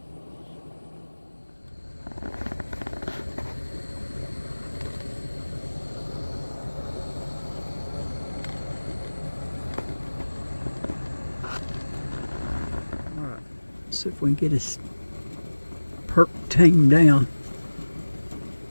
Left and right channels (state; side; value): inverted; both; correlation -1.00